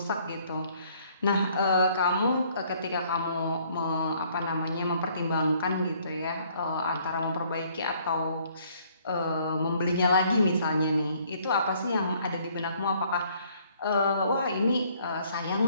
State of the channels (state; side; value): inverted; both; correlation -0.63